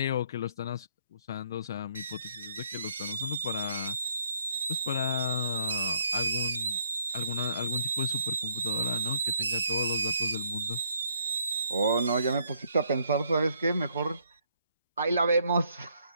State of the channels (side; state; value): both; inverted; correlation -0.70